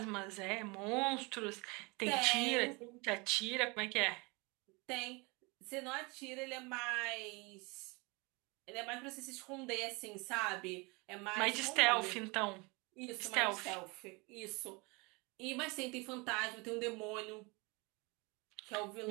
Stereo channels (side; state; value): left; quieter; 27.5 dB